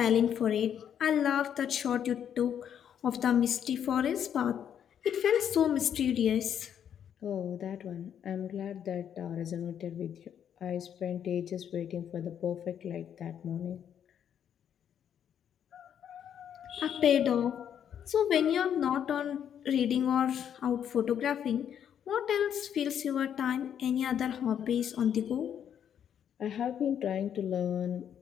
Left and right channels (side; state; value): right; quieter; 9.0 dB